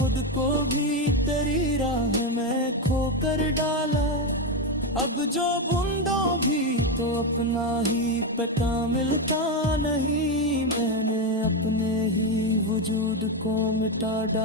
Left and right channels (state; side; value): normal; both; correlation 0.09